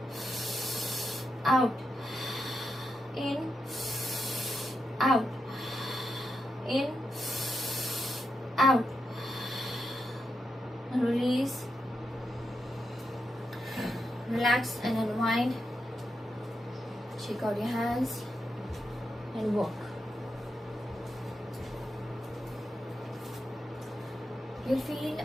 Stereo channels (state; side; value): normal; both; correlation 0.85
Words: out, in, out, in, out. Release, relax and unwind. Shake out your hands and walk. You'll feel